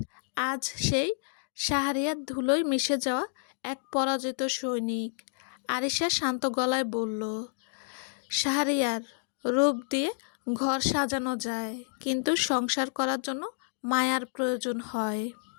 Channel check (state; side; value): silent; right; digital silence